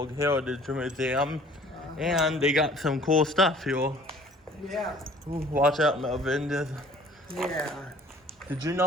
Heritage Museum. And they got some cool stuff here. Yeah. Ooh, watch out, Melvin. Yeah. Did you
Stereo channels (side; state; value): both; normal; correlation 0.52